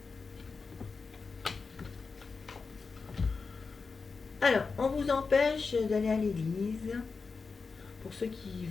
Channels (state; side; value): quieter; right; 4.6 dB